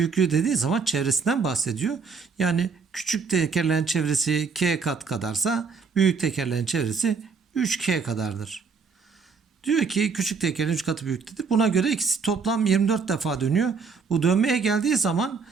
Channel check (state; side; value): quieter; left; 5.3 dB